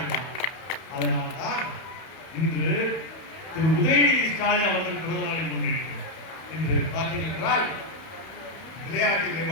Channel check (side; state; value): right; late; 31 ms